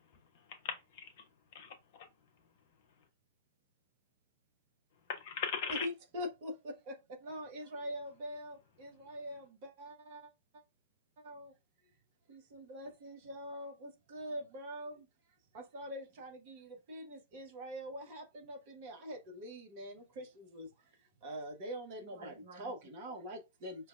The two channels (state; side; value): inverted; both; correlation -0.40